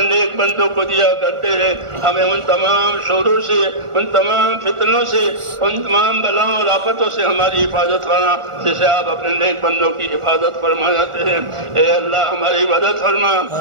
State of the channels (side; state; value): left; late; 1.4 ms